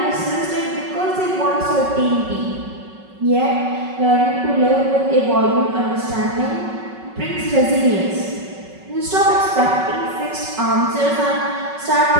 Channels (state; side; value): late; left; 5.3 ms